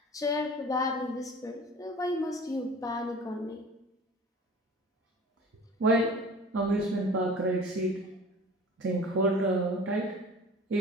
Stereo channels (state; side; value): normal; both; correlation 0.41